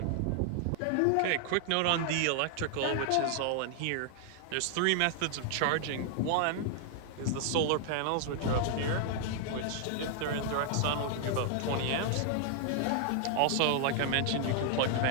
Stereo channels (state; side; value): different; both; correlation 0.00